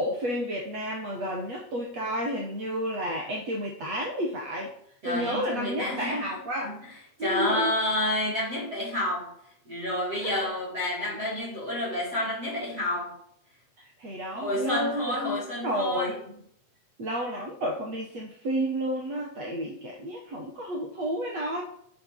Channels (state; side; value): late; left; 7.9 ms